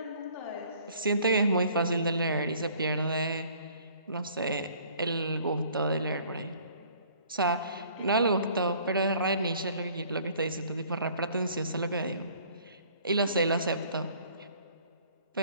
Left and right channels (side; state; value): both; inverted; correlation -0.56